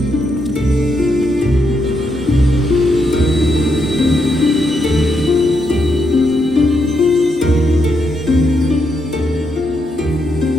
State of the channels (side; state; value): both; normal; correlation 0.80